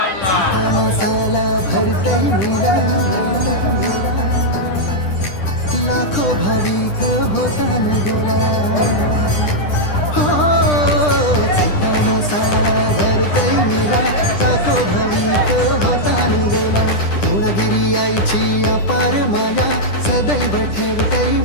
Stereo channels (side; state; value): right; late; 10 ms